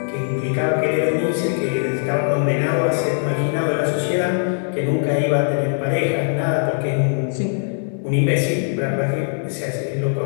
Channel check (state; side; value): silent; right; digital silence